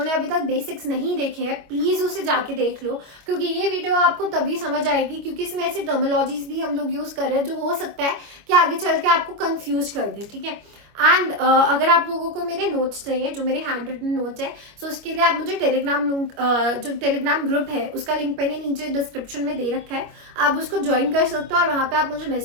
अभी तक बेसिक्स नहीं देखे हैं प्लीज़ उसे जाके देख लो, क्योंकि ये वीडियो आपको तभी समझ आएगी क्योंकि इसमें ऐसी टर्मिनोलॉजीज भी हम लोग यूज़ कर रहे हैं जो हो सकता है कि आगे चल के आपको कंफ्यूज कर दे, ठीक है। एंड अगर आप लोगों को मेरे नोट्स चाहिए, जो मेरे हैंड रिटन नोट्स है, सो उसके लिए आप मुझे टेलीग्राम जो टेलीग्राम ग्रुप है उसका लिंक मैंने नीचे डिस्क्रिप्शन में दे रखा है, आप उसको ज्वाइन कर सकते हो और वहाँ पे आप मुझे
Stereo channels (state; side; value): late; left; 25 ms